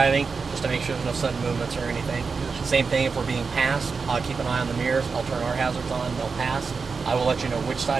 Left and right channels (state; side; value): quieter; left; 4.9 dB